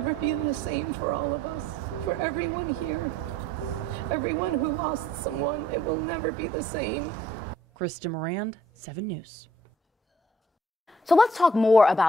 be the same for all of us, for everyone here. Everyone who lost someone, it will never be the same. Krista Morand, 7 News. So let's talk more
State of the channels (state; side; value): normal; both; correlation 0.60